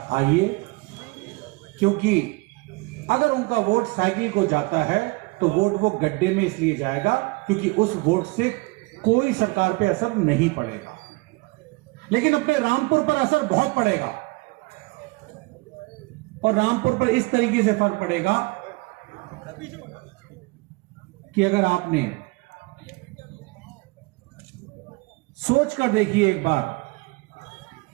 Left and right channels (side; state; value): left; quieter; 26.3 dB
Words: आइए, क्योंकि अगर उनका वोट साइकिल को जाता है तो वोट वो गड्ढे में इसलिए जाएगा क्योंकि उस वोट से कोई सरकार पे असर नहीं पड़ेगा, लेकिन अपने रामपुर पर असर बहुत पड़ेगा और रामपुर पर इस तरीके से फर्क पड़ेगा कि अगर आपने सोच कर देखिए एक बार,